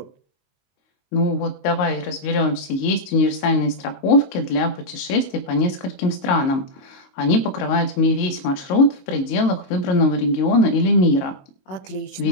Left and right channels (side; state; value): right; late; 22 ms